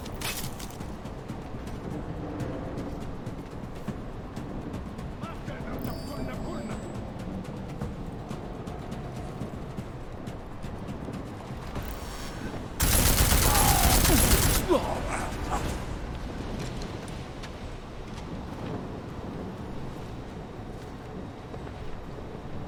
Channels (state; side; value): identical; both; correlation 1.00